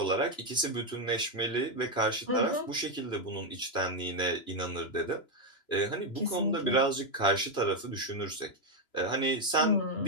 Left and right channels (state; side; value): late; right; 3.0 ms